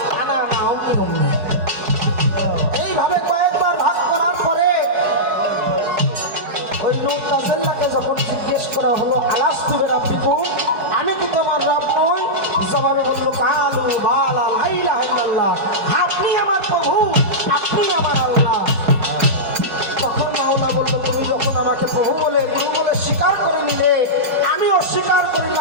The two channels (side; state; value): left; late; 4.6 ms